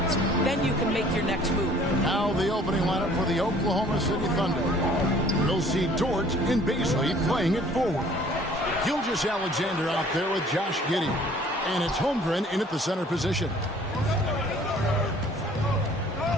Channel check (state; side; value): normal; both; correlation 0.54